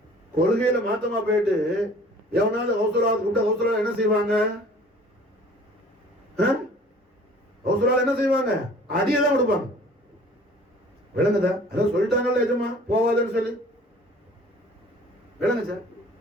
கொள்கையில மாத்தமா போயிட்டு எவனாவது கௌசலாவது கூப்பிட்டா கௌசலா என்ன செய்வாங்க? கௌசலால என்ன செய்வாங்க? அடியதான் கொடுப்பாங்க. விளங்குதா? அதான் சொல்லிட்டாங்கல்ல எஜமா போவாதுன்னு சொல்லி. விளங்குச்சா?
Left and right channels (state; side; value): normal; both; correlation 0.50